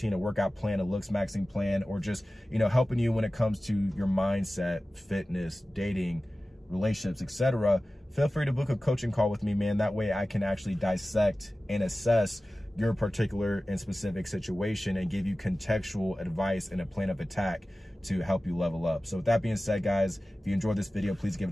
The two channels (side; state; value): both; normal; correlation 0.96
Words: a workout plan, a Looksmaxxing plan, or just, you know, helping you when it comes to your mindset, fitness, dating, relationships, etc., feel free to book a coaching call with me, man. That way I can actually dissect and assess your particular and specific situation and give you contextual advice and a plan of attack to help you level up. So with that being said, guys, if you enjoyed this video, please give